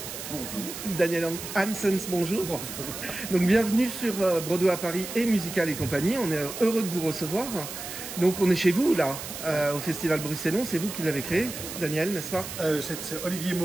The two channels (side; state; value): right; noise; hiss, 9 dB below the sound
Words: Bonjour. Daniel Hansens, bonjour. Bonjour. Donc bienvenue sur Broadway à Paris et Musical et compagnie. On est heureux de vous recevoir. Donc on est chez vous là, au Festival Bruxellon. C'est vous qui l'avez créé, Daniel, n'est-ce pas? C'est Olivier